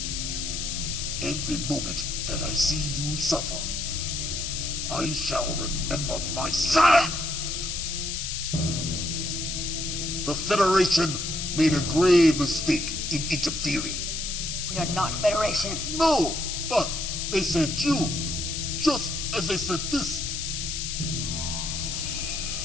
Every moment that I see you suffer, I shall remember my sire! The Federation made a grave mistake in interfering. We are not Federation. No, but they sent you, just as they sent this.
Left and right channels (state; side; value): noise; left; hiss, 3 dB below the sound